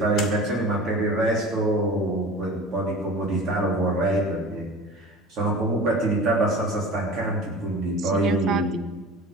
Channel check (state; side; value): normal; both; correlation 0.38